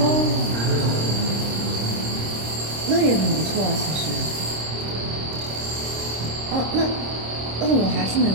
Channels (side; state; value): left; late; 26 ms